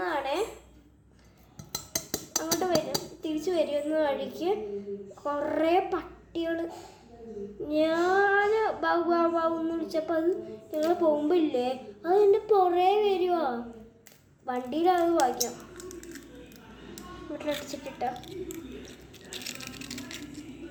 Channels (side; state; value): both; identical; correlation 1.00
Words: അങ്ങോട്ട് തിരിച്ചു വരുന്ന വഴിക്ക് കുറേ പട്ടികൾ. ഞാൻ ബാബുന്ന് വിളിച്ചപ്പോൾ അത് ഞങ്ങൾ പോകുമ്പോൾ ഇല്ലേ, അത് എൻ്റെ പുറേ വരുവാ. വണ്ടിയിലത് വായിക്കാം. വീട്ടിലടിച്ചിട്ടിട്ട